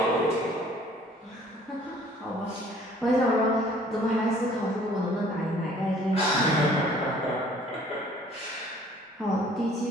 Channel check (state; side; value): normal; both; correlation 0.55